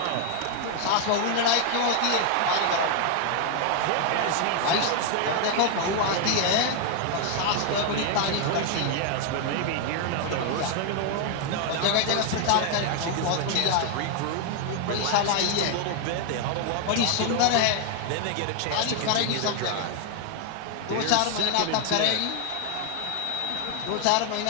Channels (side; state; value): both; different; correlation 0.00